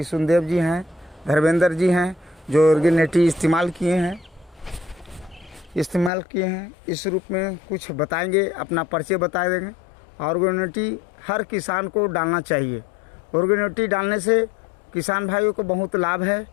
जी हैं, धर्मेंद्र जी हैं जो ऑर्गेनिटी इस्तेमाल किए हैं। इस रूप में कुछ बताएंगे, अपना परिचय बता देंगे। ऑर्गेनिटी हर किसान को डालना चाहिए। ऑर्गेनिटी डालने से किसान भाइयों को बहुत लाभ है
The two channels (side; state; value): right; drops out; at 6.1 s